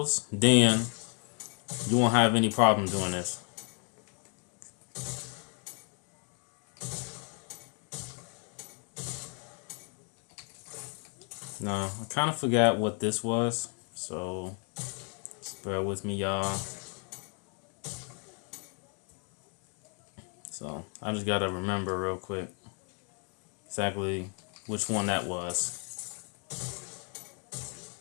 then you won't have any problem doing this. Now, I kind of forgot what this was, so just bear with me, y'all. So I just gotta remember real quick exactly which one that was.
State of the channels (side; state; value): right; quieter; 39.9 dB